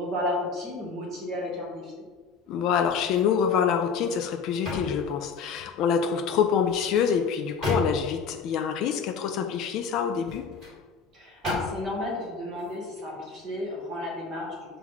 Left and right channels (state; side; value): quieter; right; 5.8 dB